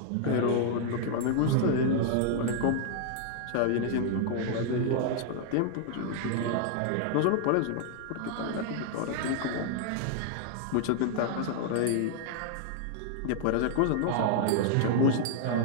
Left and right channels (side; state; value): both; different; correlation 0.00